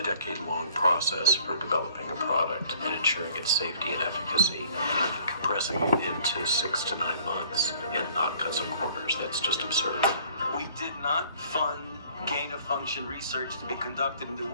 decade-long process for developing a product and ensuring its safety and efficacy and compressing it into 6 to 9 months and not cut some corners. That's just absurd. We did not fund gain-of-function research to be conducted in the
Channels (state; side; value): inverted; both; correlation -0.56